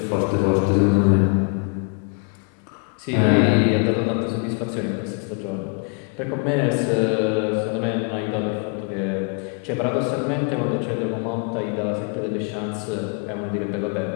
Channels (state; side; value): quieter; right; 38.9 dB